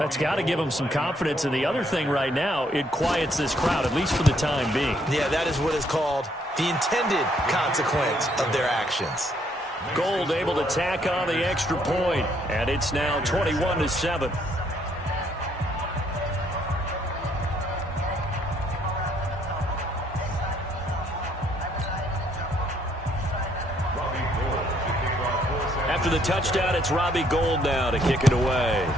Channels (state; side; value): normal; both; correlation 0.69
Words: got to give them some confidence. And the other thing right now, it quiets this crowd, at least for the time being. Yeah, that is what is called the intended consequence of their actions. Gold able to tack on the extra point, and it's now 21-7. After the touchdown, it's Robbie Gould now to kick it away.